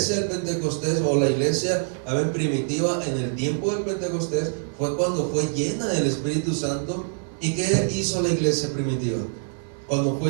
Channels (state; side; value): silent; left; 57 dB below the other